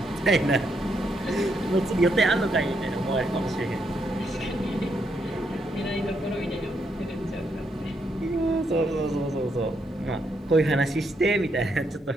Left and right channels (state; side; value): normal; both; correlation 0.78